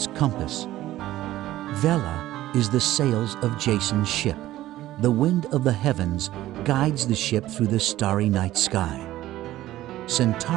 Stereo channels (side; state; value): left; quieter; 15.0 dB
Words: compass. Vela is the sails of Jason's ship. The wind of the heavens guides the ship through the starry night sky.